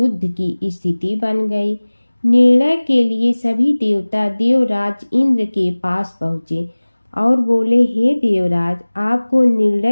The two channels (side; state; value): both; inverted; correlation -1.00